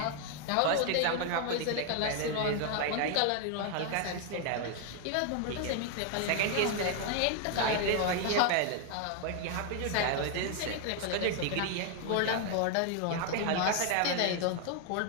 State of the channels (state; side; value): different; both; correlation 0.00